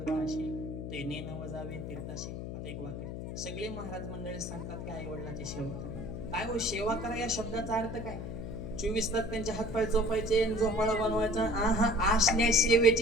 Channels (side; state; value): left; noise; hum, 7 dB below the sound